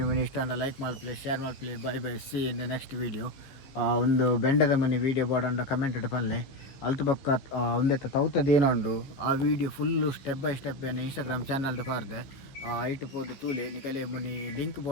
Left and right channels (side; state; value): right; late; 15 ms